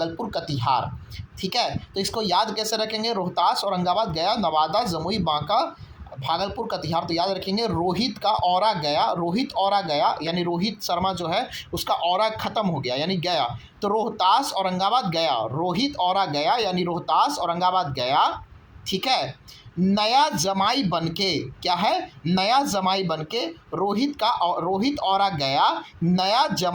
कटिहार, ठीक है। तो इसको याद कैसे रखेंगे, रोहतास, औरंगाबाद, गया, नवादा, जमुई, बांका, भागलपुर, कटिहार। तो याद रखेंगे रोहित का औरा गया, रोहित औरा गया, यानी रोहित शर्मा जो है उसका औरा खत्म हो गया यानी गया। तो रोहतास, औरंगाबाद, गया, रोहित औरा गया यानी रोहतास, औरंगाबाद, गया, ठीक है। नया जमाई बनके, क्या है, नया जमाई बनके, रोहित औरा गया, नया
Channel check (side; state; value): both; identical; correlation 1.00